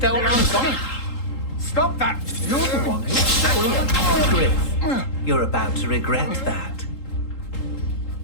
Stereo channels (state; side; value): late; right; 3.8 ms